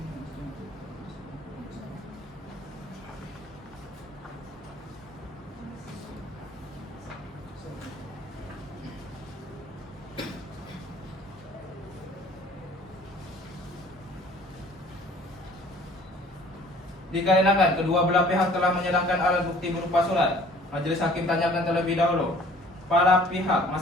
Dikarenakan kedua belah pihak telah menyerahkan alat bukti berupa surat, majelis hakim tanyakan terlebih dahulu. Para pihak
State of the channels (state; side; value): normal; both; correlation 0.53